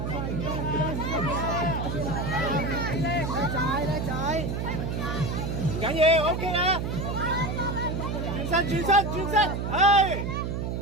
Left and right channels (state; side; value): noise; right; hum, 2 dB below the sound